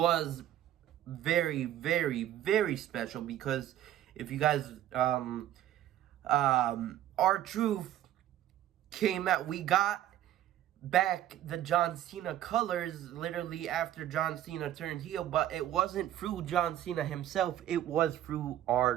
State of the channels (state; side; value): quieter; left; 12.2 dB